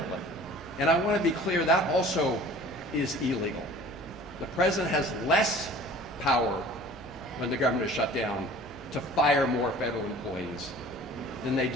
And I want to be clear, that also is illegal. The president has less power when the government is shut down to fire more federal employees than they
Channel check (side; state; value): both; normal; correlation 0.46